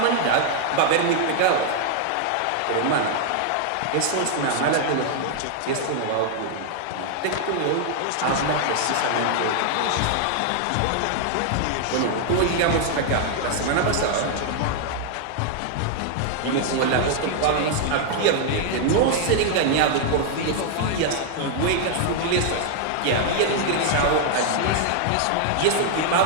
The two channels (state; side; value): different; both; correlation 0.00